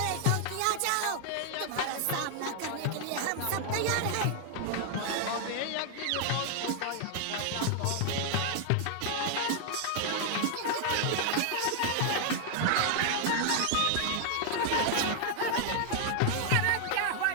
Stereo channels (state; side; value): different; both; correlation 0.00